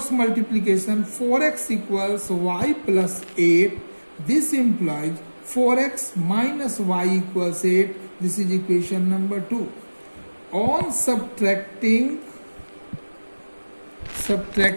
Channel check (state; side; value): inverted; both; correlation -1.00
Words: multiplication, 4x equals y plus 8. This implies 4x minus y equals 8. This is equation number 2. On subtracting